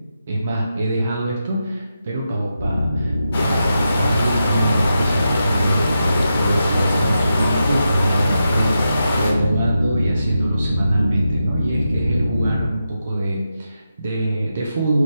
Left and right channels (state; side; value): inverted; both; correlation -0.87